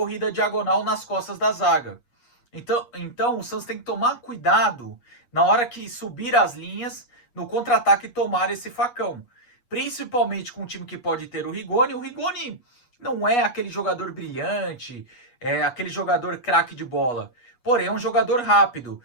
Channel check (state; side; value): late; right; 8.3 ms